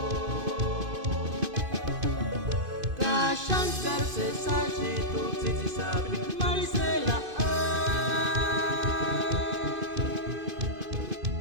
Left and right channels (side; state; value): left; late; 2.5 ms